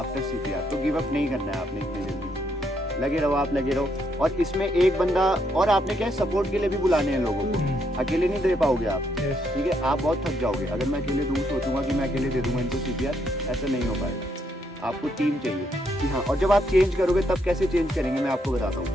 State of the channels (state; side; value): normal; both; correlation 0.75